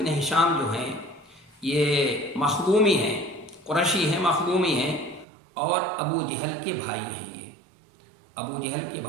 ہشام جو ہیں یہ مخزومی ہیں، قریشی ہیں، مخزومی ہیں، اور ابو جہل کے بھائی ہیں۔ یہ ابو جہل کے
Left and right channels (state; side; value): drops out; left; at 5.2 s